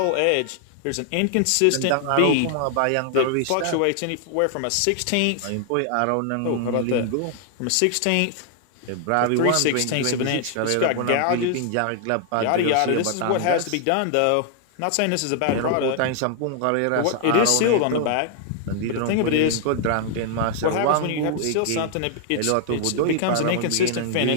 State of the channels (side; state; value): both; different; correlation 0.00